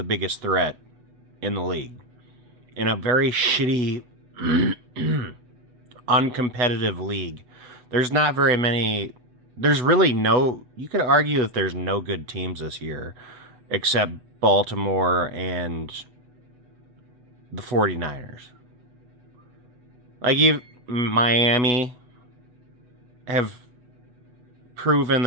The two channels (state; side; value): late; left; 8.1 ms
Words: biggest threat in the league. In a very shitty, uncompetitive league. There's not very many... There's really no... You could argue that there's no good teams this year. Except Baltimore and the 49ers. Like, Miami have proven